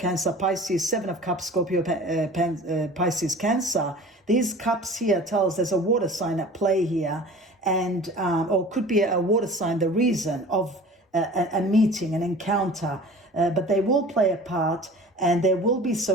Pisces, Seven of Cups, Scorpio, Pisces, Cancer. These cups here tell us there's a water sign at play here, and or could be a water sign, the reason of a meeting, an encounter, but they will play a part, and there will be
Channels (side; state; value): both; normal; correlation 0.42